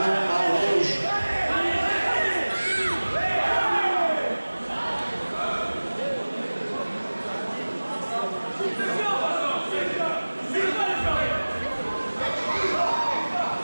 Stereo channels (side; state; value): both; inverted; correlation -1.00